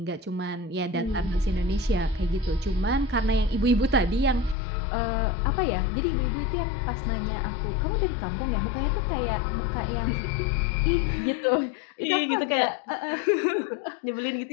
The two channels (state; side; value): drops out; right; at 4.5 s